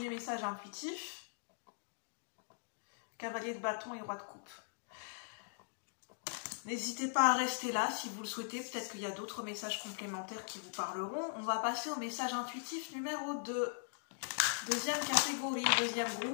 message intuitif. Cavalier de bâton et roi de coupe. N'hésitez pas à rester là si vous le souhaitez. Peut-être qu'il y a d'autres messages complémentaires qui vous parleront. On va passer au message intuitif numéro 2. Deuxième catégorie, deuxième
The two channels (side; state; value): right; silent; digital silence